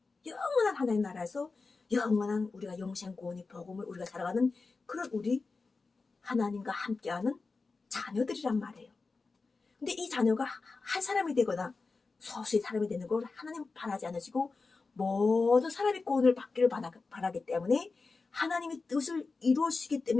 영원한 하나님 나라에서 영원한 우리가 영생 구원의 복음을 우리가 살아가는 그런 우리 하나님과 함께하는 자녀들이란 말이에요. 근데 이 자녀가 한 사람이 되거나 소수의 사람이 되는 걸 하나님 바라지 않으시고 모든 사람이 구원을 받기를 바라기 때문에 하나님의 뜻을 이루시기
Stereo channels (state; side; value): quieter; right; 4.1 dB